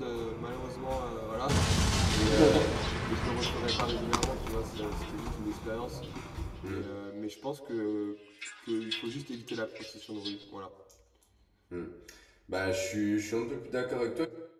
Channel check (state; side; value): identical; both; correlation 1.00